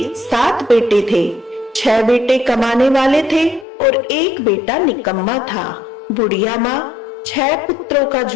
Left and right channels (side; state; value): right; drops out; at 3.7 s